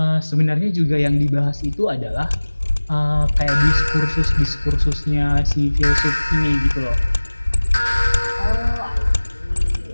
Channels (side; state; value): both; inverted; correlation -1.00